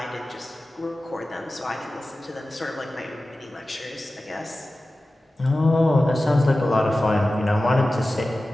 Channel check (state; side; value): normal; both; correlation 0.95